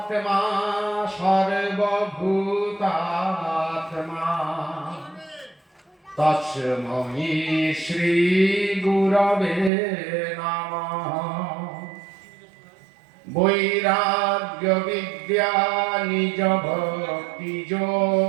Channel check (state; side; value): drops out; left; at 9.7 s